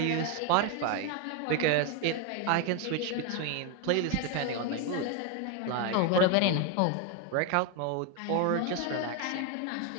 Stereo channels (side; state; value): both; different; correlation 0.01